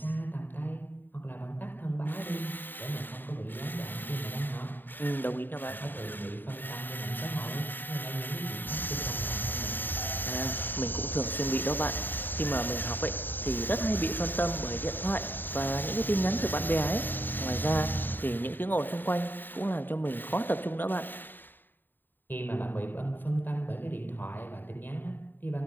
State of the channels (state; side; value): late; right; 0.092 ms